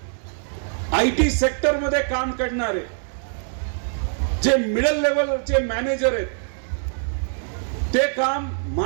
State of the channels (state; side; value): silent; left; digital silence